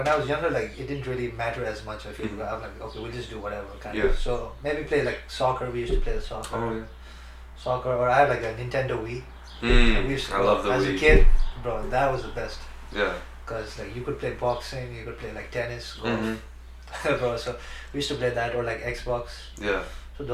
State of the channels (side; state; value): both; identical; correlation 1.00